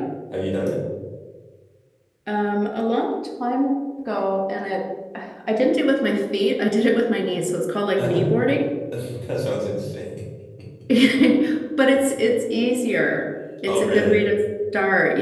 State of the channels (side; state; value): both; identical; correlation 1.00